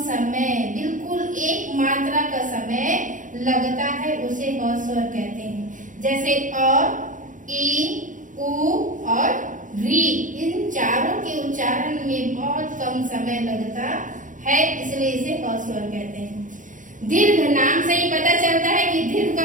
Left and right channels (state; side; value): late; left; 0.38 ms